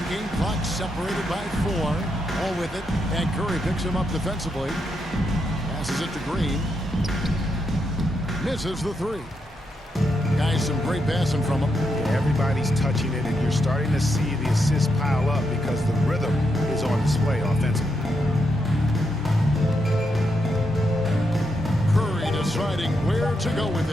game clock separated by 4, all with it, and Curry picks him up defensively. Passes it to Green. Misses the 3. Guys, some great passing from him. Everybody's touching it, and you're starting to see the assists pile up because the rhythm is on display offensively. Curry deciding where to go with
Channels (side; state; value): both; normal; correlation 0.82